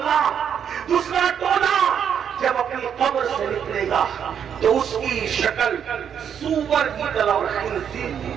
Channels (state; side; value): quieter; left; 8.2 dB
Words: دوسرا ٹولہ جب اپنی قبر سے نکلے گا تو اس کی شکل سور کی طرح اور خنزیر کی